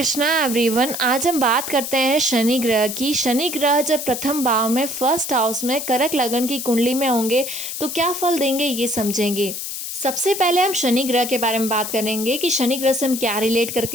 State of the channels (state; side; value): noise; left; hiss, 6 dB below the sound